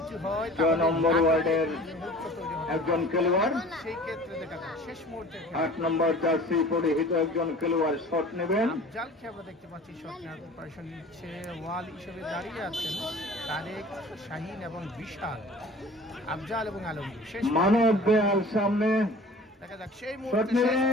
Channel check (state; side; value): normal; both; correlation 0.44